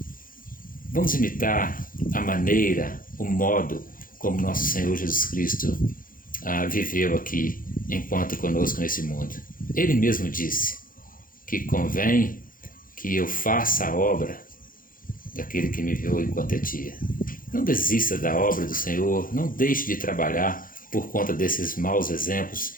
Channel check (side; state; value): right; late; 0.40 ms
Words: Vamos imitar a maneira, o modo como nosso Senhor Jesus Cristo viveu aqui enquanto conosco nesse mundo. Ele mesmo disse que convém que eu faça a obra daquele que me enviou enquanto é dia. Não desista da obra do Senhor, não deixe de trabalhar por conta desses maus exemplos